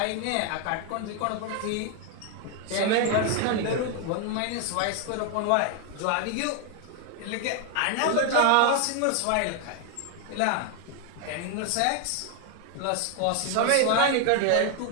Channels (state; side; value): different; both; correlation 0.00